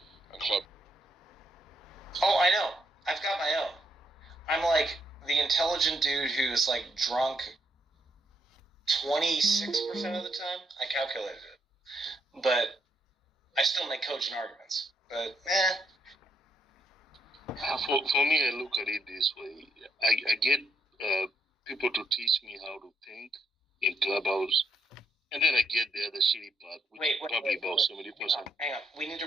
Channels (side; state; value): both; normal; correlation 0.75